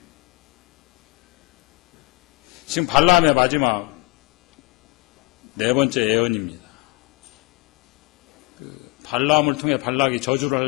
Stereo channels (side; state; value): right; quieter; 25.2 dB